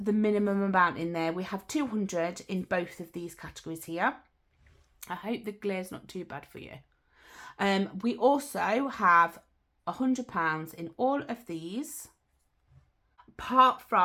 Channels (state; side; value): identical; both; correlation 1.00